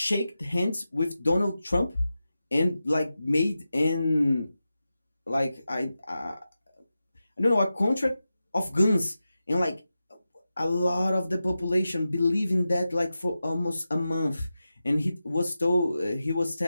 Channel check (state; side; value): inverted; both; correlation -0.92